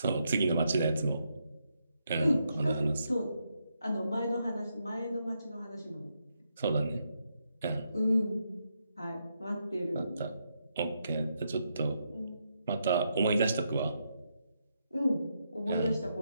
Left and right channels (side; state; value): both; inverted; correlation -0.81